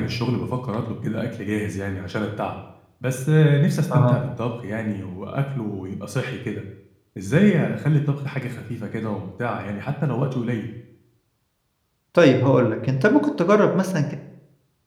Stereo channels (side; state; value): both; identical; correlation 1.00